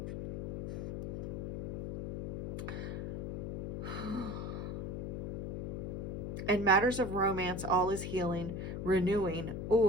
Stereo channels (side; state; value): left; noise; hum, 3 dB below the sound